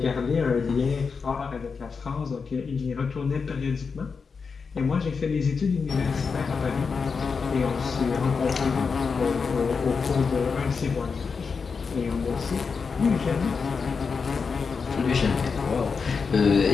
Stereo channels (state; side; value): quieter; right; 5.3 dB